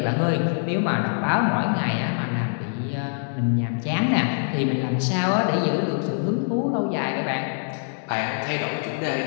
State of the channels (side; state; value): right; silent; digital silence